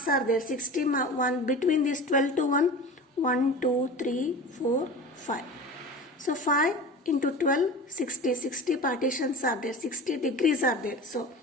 are there. 60 1 between this 12 to 1. 1, 2, 3, 4, 5. So 5 into 12, 60. 60 partitions are there. 60 degrees are there. So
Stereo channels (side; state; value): both; normal; correlation 0.34